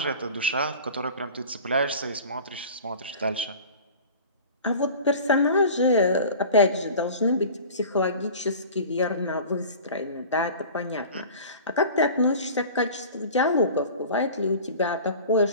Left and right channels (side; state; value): both; inverted; correlation -0.40